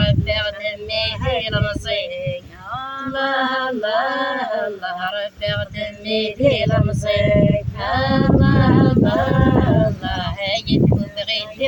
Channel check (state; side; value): identical; both; correlation 1.00